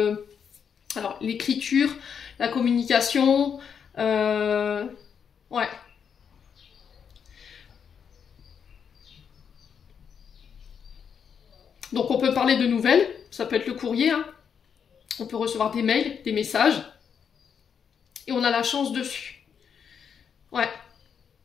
alors l'écriture, la communication, ouais. Donc on peut parler de nouvelles, ça peut être le courrier, hein. On peut recevoir des mails, des messages, et on a la chance dessus. Ouais.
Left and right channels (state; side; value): quieter; right; 7.2 dB